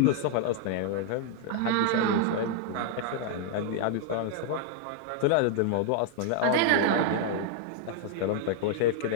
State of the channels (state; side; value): different; both; correlation -0.01